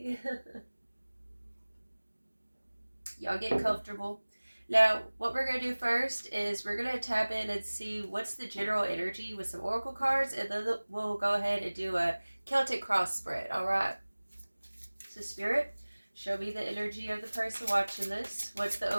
Y'all get comfortable. Now, what we're going to do first is we're going to tap in and see what's the general energy with some oracle cards, and then we'll go ahead and do a Celtic cross spread, all right? So, Spirit, show me the energy of the person watching this. What's the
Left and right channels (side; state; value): both; inverted; correlation -1.00